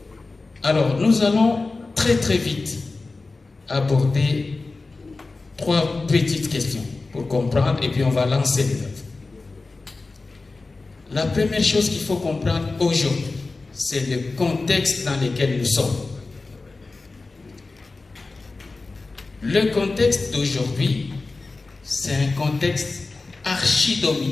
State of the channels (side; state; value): right; quieter; 3.6 dB